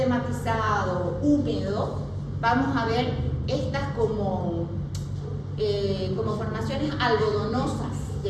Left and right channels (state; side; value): identical; both; correlation 1.00